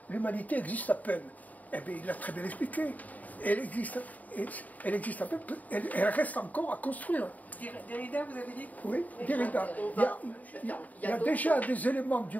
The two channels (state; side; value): late; right; 0.075 ms